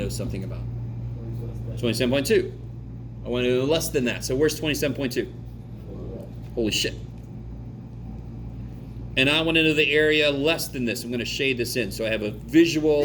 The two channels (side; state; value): both; identical; correlation 1.00